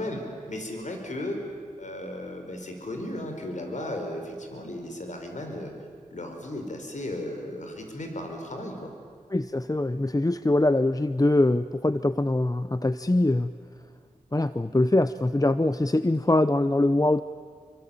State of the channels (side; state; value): both; normal; correlation 0.89